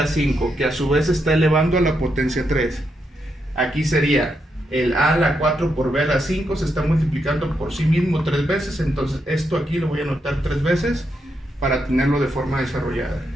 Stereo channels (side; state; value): both; normal; correlation 0.81